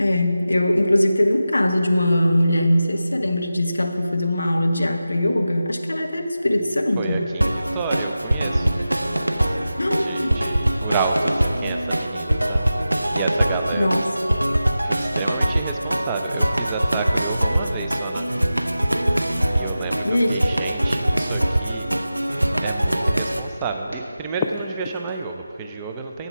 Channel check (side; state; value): both; inverted; correlation -0.92